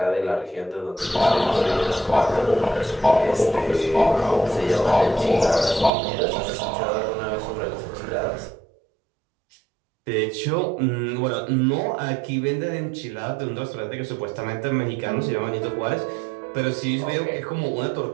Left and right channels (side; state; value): left; drops out; at 5.9 s